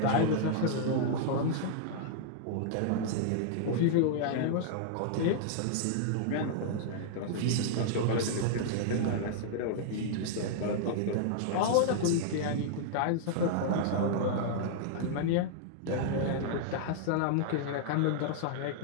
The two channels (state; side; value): different; both; correlation -0.01